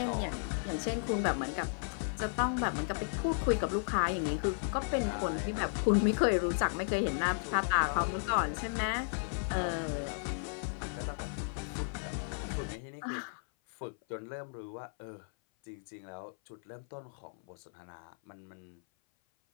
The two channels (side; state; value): right; silent; 55 dB below the other